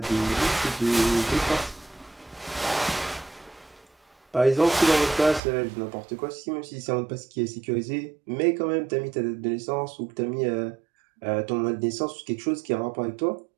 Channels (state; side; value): drops out; left; at 5.4 s